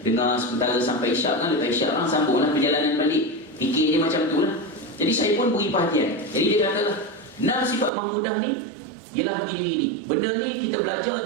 dengar sementara sampai isyak kan. Lepas isyak kan sambunglah perjalanan balik. Fikir dia macam tu lah. Jadi saya pun beri perhatian. Jadi dia katalah 6 sifat mahmudah ni ialah begini-begini. Benda ni kita belajar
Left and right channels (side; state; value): left; drops out; at 7.9 s